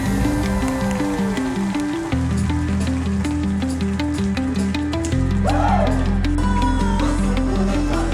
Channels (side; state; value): both; identical; correlation 1.00